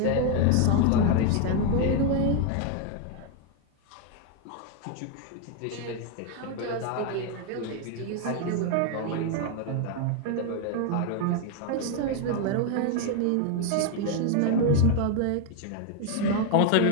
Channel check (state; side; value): different; both; correlation 0.01